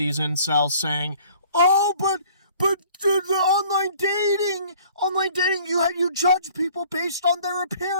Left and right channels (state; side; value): inverted; both; correlation -0.54